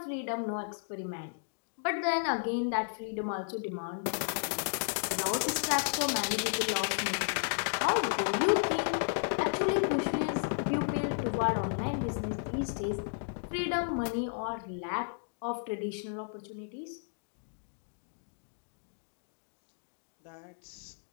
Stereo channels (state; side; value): silent; right; digital silence